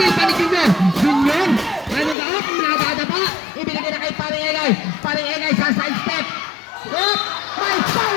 pa ni Junior. Junior, anong gaot? Nagada pa. Ibinigay na kay Paring Egay. Paring Egay sa side step. Hop! May foul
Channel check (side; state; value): right; drops out; at 2.1 s